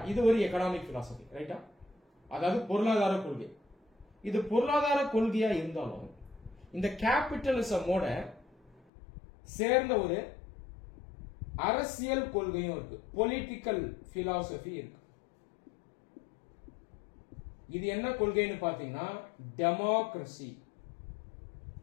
இது ஒரு எக்கனாமிக் பிலாசபி, ரைட்டா? அதாவது பொருளாதார கொள்கை. இது பொருளாதார கொள்கையா இருந்தாலும் இந்த கேபிட்டலிசமோட சேர்ந்த ஒரு அரசியல் கொள்கையும் இருக்கு, பொலிட்டிக்கல் பிலாசபி இருக்கு. இது என்ன கொள்கைன்னு பாத்தீங்கன்னா டெமோக்ரசி.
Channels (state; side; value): drops out; right; at 8.8 s